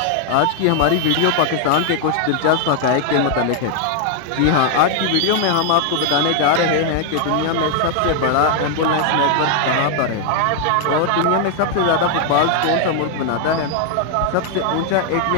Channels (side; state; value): both; different; correlation 0.00